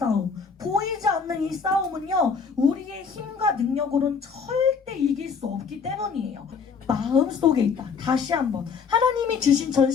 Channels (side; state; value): right; quieter; 5.7 dB